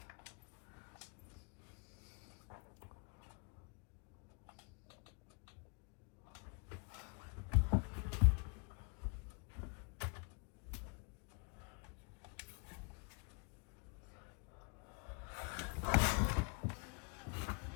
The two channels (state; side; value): quieter; right; 34.7 dB